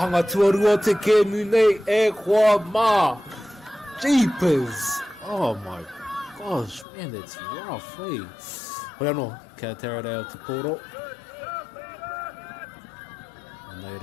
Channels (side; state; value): right; drops out; at 6.9 s